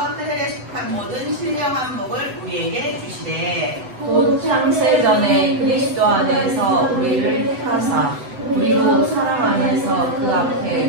속한 모든 신령한 복을 우리에게 주시되 곧 창세전에 그리스도 안에서 우리를 택하사 우리로 사랑 안에서 그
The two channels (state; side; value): late; left; 8.0 ms